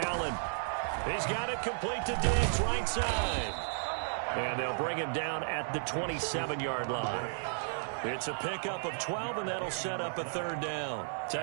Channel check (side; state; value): left; silent; 55 dB below the other